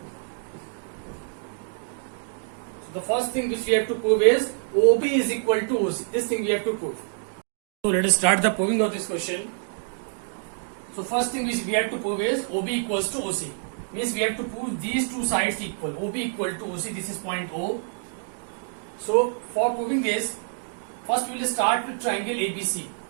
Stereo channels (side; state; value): left; silent; 61 dB below the other